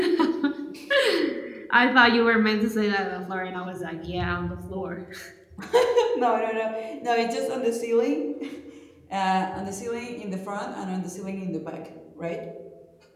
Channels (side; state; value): both; identical; correlation 1.00